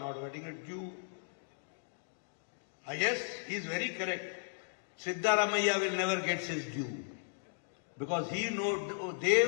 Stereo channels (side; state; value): right; silent; digital silence